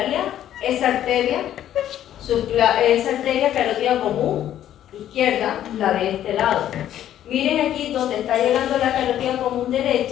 esa arteria carótida común izquierda, la de este lado. Miren aquí donde está llegando la carótida común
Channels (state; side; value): quieter; right; 11.5 dB